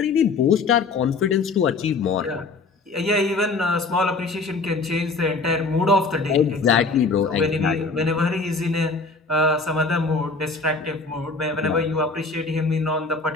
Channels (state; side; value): quieter; right; 3.9 dB